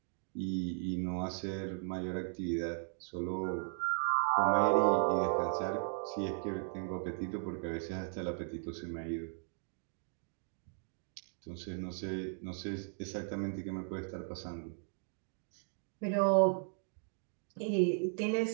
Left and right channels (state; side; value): silent; left; 53 dB below the other